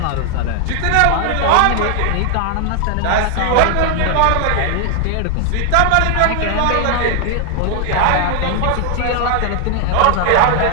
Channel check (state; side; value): different; both; correlation 0.00